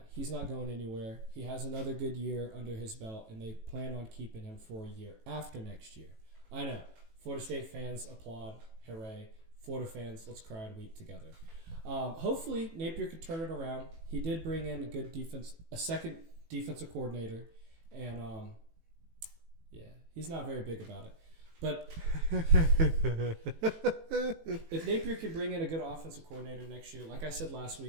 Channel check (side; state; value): left; late; 18 ms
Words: he's not going anywhere. He has another good year under his belt, and they plan on keeping him for a year after next year. I know. Florida State fans applaud. Hooray. Florida fans, let's cry and weep together. Hopefully, Napier could turn it around. He did bring in a second defensive coordinator, and he's not very big about it. But if Napier can bring in a good offensive coordinator next year, like I said last